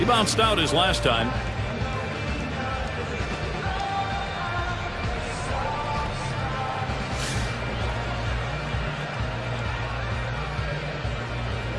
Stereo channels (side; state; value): both; identical; correlation 1.00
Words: bounced out his last time.